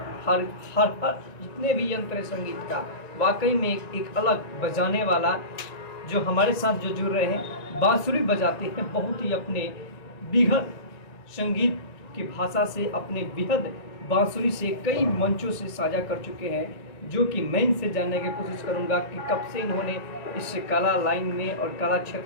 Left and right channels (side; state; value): right; late; 1.9 ms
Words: हर जितने भी यंत्र है संगीत का वाकई में एक अलग बजाने वाला जो हमारे साथ जो जुड़ रहे हैं बांसुरी बजाते हैं, बहुत ही अपने बिहद संगीत की भाषा से अपने बिहद बांसुरी से कई मंचों से साझा कर चुके हैं, जो कि मैं इनसे जानने की कोशिश करूंगा कि कब से इन्होंने इस कला लाइन में और कला